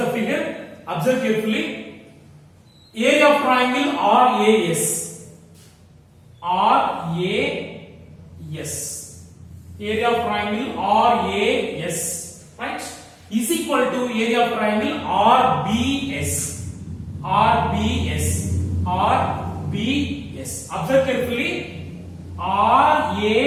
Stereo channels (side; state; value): both; identical; correlation 1.00